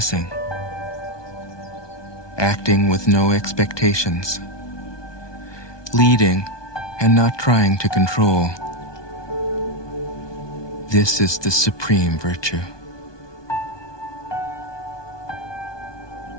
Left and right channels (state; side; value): late; right; 1.2 ms